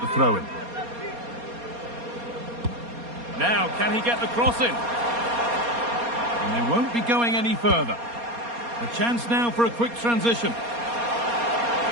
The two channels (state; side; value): late; left; 4.2 ms